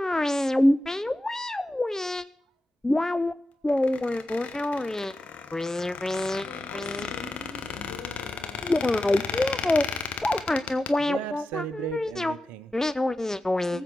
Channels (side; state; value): both; normal; correlation 0.92